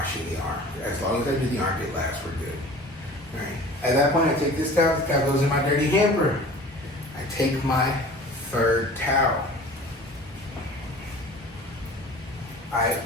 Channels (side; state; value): both; normal; correlation 0.42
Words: the arm. As long as I do the armpit last, we're good. All right. At that point, I take this towel goes in my dirty hamper. I take my third towel. I